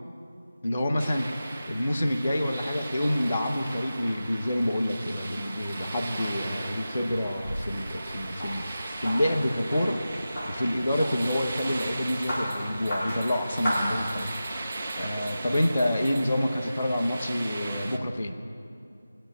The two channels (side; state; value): both; inverted; correlation -0.94